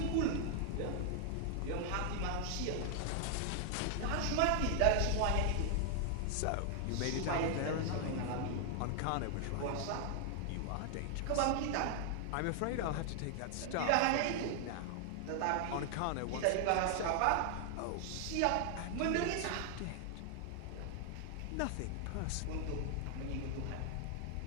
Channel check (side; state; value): both; different; correlation 0.00